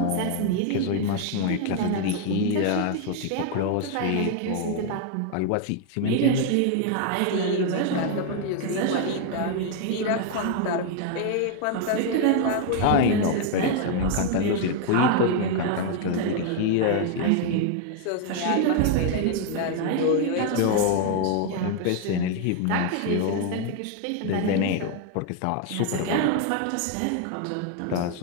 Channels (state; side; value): different; both; correlation 0.00